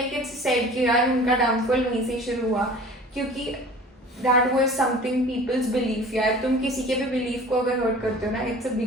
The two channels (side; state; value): both; normal; correlation 0.43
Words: इट्स सेड कि यार उनका डाउनफॉल वहीं से शुरू हुआ, क्योंकि that was something people's belief. यार तुम किसी के भी बिलीफ को अगर हर्ट करते हो ना, इट्स अ